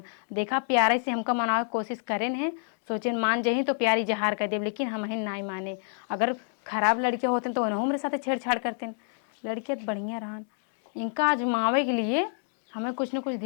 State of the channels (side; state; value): right; silent; 59 dB below the other